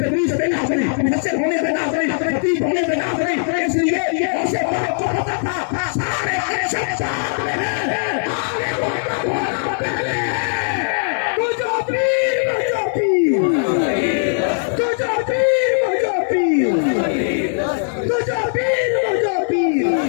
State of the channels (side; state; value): right; silent; digital silence